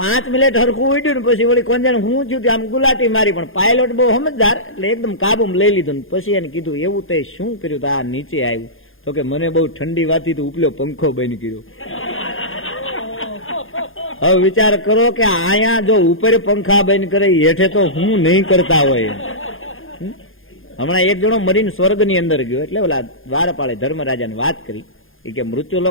મિનિટ હરખું ઉડ્યું ને પછી વળી કોંજાને હું થયું આમ ગુલાટી મારી. પણ પાયલોટ બહુ સમજદાર એટલે એકદમ કાબુમાં લઈ લીધું. પછી એને કીધું એવું તે શું કર્યું? તો આ નીચે આવ્યું. તો કે મને બહુ ઠંડી વાતી તો ઉપલો પંખો બંધ કર્યો. હવે વિચાર કરો કે આયા જો ઉપર પંખા બંધ કરે, હેઠે તો હું નહીં કરતા હોય. હમણાં એક જણો મરીને સ્વર્ગની અંદર ગયો. એટલે ઓલા દ્વારપાળે ધર્મરાજાને વાત કરી કે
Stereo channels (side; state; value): right; late; 0.59 ms